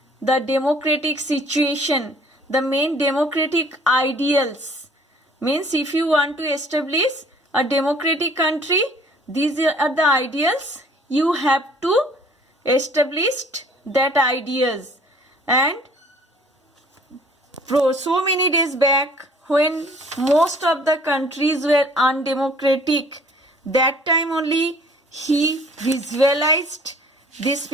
the democratic situation, the main democratic ideals. Means if you want to establish a democratic country, these are the ideals you have to establish that ideas. And so many days back when most of the countries were undemocratic, that time only he visualized this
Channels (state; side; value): normal; both; correlation 0.54